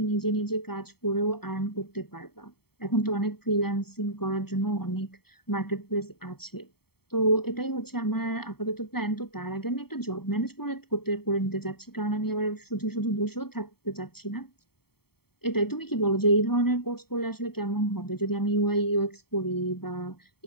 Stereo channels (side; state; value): right; late; 0.95 ms